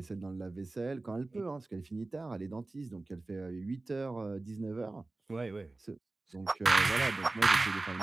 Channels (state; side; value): quieter; left; 3.1 dB